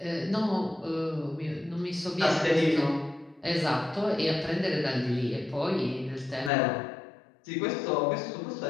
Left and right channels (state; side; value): drops out; right; at 6.5 s